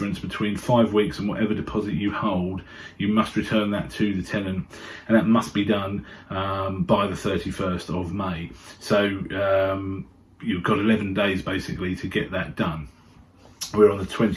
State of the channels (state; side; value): identical; both; correlation 1.00